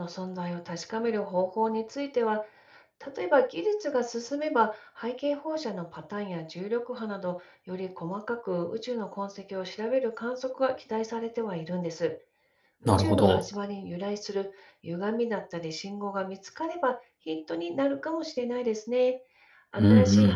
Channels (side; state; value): both; identical; correlation 1.00